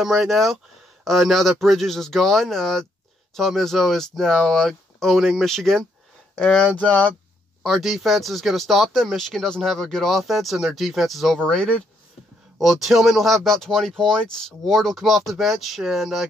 right now. Now that Bridges is gone, Tom Izzo is now owning Michigan, and our defense is going to stop them. Michigan doesn't have a good offense, and their defense is overrated. Well, Tillman will have about 20 points. Ward will come off the bench and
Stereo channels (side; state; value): both; normal; correlation 0.74